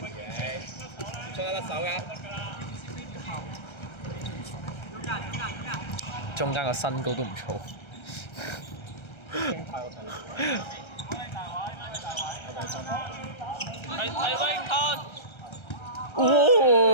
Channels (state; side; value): late; right; 1.3 ms